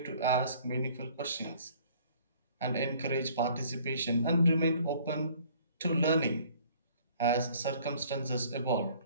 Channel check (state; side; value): inverted; both; correlation -0.56